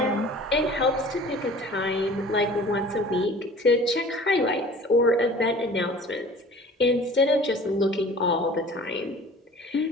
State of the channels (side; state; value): both; normal; correlation 0.45